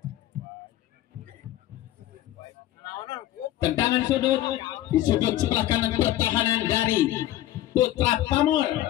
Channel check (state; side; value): quieter; right; 14.0 dB